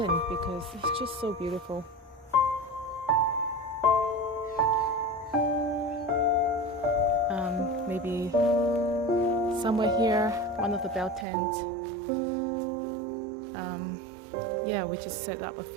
because it's just so beautiful. Maybe somewhere here, one of the bell tents. Yeah, we just set up a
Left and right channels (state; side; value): drops out; left; at 11.2 s